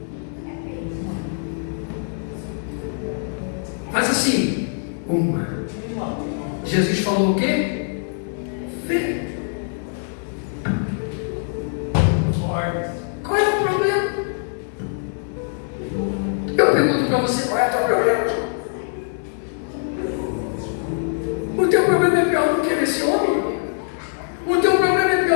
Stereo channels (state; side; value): silent; right; digital silence